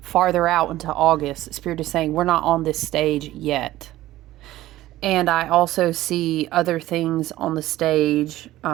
out into August. Spirit is saying we're not on this stage yet. And I also see other things on the stage.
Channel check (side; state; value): left; quieter; 15.6 dB